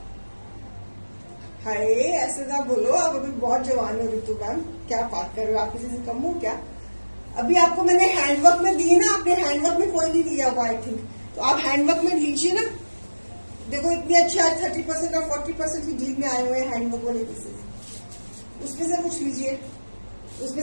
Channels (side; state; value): both; inverted; correlation -1.00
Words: हाय, ऐसे ना बोलो, आप अभी बहुत जवान हो ऋतु मैम, क्या बात कर रहे हो? आप किसी से कम हो क्या? अभी आपको मैंने हैंडवर्क में दिए ना, आपने हैंडवर्क में कोई नहीं लिया हुआ आई थिंक, तो आप हैंडवर्क में लीजिए ना। देखो इतने अच्छे आज 30% और 40% की डील में आए हुए हैं हैंडवर्क वाले पीसेस, उसमें से कुछ लीजिए।